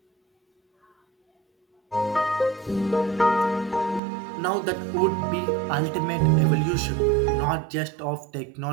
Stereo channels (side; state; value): left; drops out; at 4.0 s